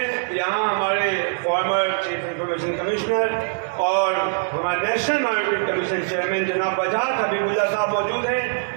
यहाँ हमारे फॉर्मर चीफ इंफॉर्मेशन कमिश्नर और हमारे नेशनल माइनॉरिटी कमीशन चेयरमैन जनाब वजाहत हबीबुल्लाह साहब मौजूद हैं।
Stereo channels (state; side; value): silent; left; digital silence